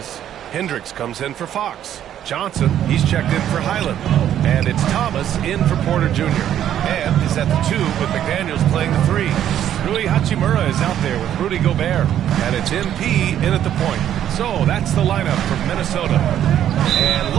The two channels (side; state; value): left; quieter; 10.7 dB